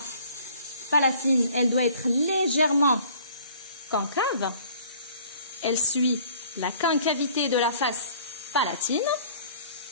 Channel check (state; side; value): inverted; both; correlation -0.53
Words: palatine, elle doit être légèrement concave. Elle suit la concavité de la face palatine.